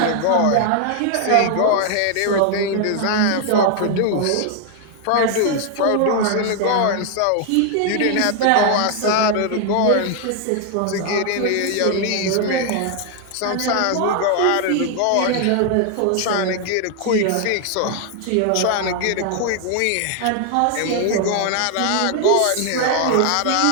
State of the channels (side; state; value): both; different; correlation 0.00